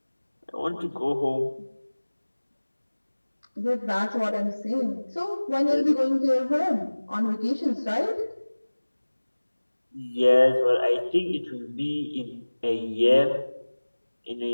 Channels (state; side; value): inverted; both; correlation -1.00